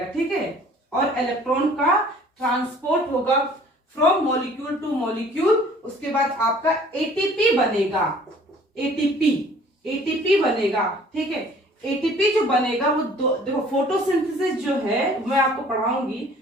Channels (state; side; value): normal; both; correlation 0.53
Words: ठीक है। और इलेक्ट्रॉन का ट्रांसपोर्ट होगा फ्रॉम मॉलिक्यूल टू मॉलिक्यूल। उसके बाद आपका एटीपी बनेगा, एटीपी बनेगा, ठीक है। एटीपी जो बनेगा वो देखो फोटोसिंथेसिस जो है मैं आपको पढ़ाऊंगी,